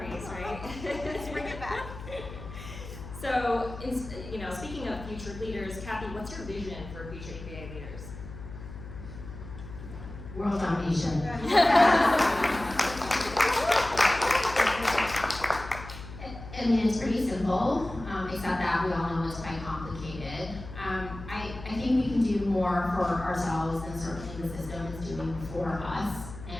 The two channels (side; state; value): left; noise; hum, 12 dB below the sound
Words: right? Let's bring it back. So, speaking of future leaders, Cathy, what's your vision for future API leaders? World domination. for us.